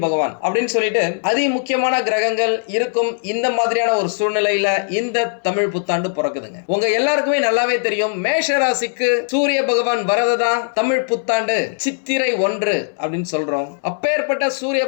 பகவான் அப்படின்னு சொல்லிட்டு அதி முக்கியமான கிரகங்கள் இருக்கும். இந்த மாதிரியான ஒரு சூழ்நிலையில இந்த தமிழ் புத்தாண்டு பிறக்குதுங்க. உங்க எல்லாருக்குமே நல்லாவே தெரியும், மேஷ ராசிக்கு சூரிய பகவான் வரதுதான் தமிழ் புத்தாண்டு சித்திரை 1 அப்படின்னு சொல்றோம். அப்பேற்பட்ட சூரிய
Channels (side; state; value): right; silent; 62 dB below the other